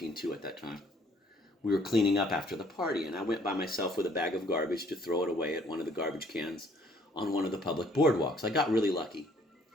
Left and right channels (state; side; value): normal; both; correlation 0.62